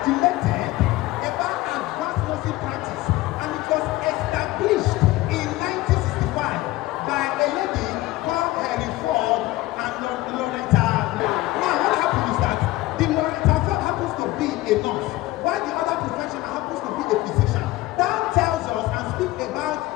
about advanced nursing practice, and it was established in 1965 by a lady called Henry Ford and Loretta. Now, what happened is that the Loretta Ford happens to be a nurse, while the other professional happens to be a physician. That tells us and speaks about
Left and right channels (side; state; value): right; quieter; 18.1 dB